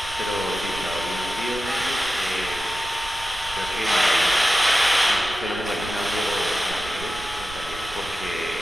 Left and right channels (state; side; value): noise; right; rumble, 15 dB below the sound